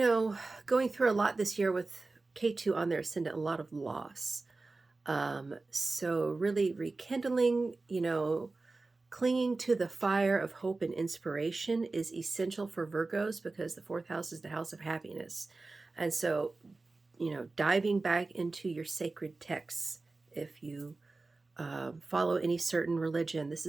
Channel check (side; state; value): left; quieter; 3.5 dB